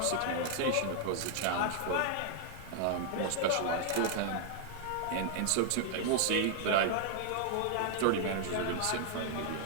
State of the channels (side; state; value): both; different; correlation -0.01